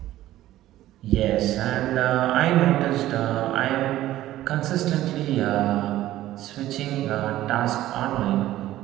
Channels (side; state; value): left; quieter; 14.5 dB